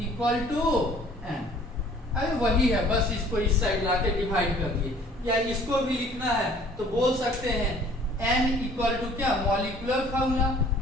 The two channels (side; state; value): both; normal; correlation 0.54